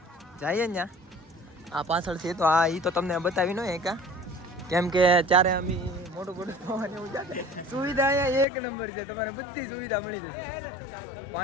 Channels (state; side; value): drops out; right; at 8.5 s